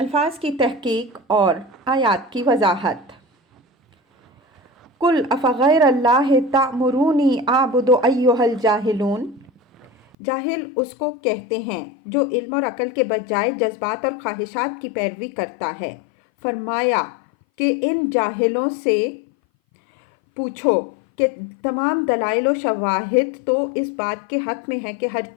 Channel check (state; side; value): drops out; right; at 10.2 s